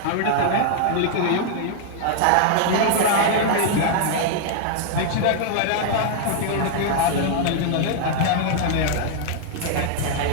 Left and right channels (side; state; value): both; different; correlation -0.01